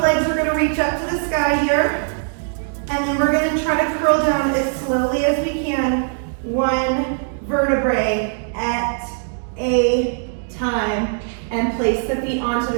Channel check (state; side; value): silent; left; digital silence